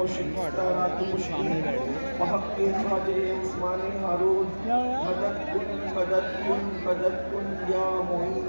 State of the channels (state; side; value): inverted; both; correlation -1.00